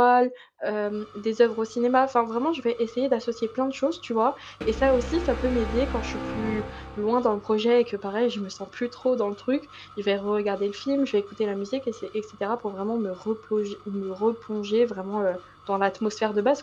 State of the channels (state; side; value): identical; both; correlation 1.00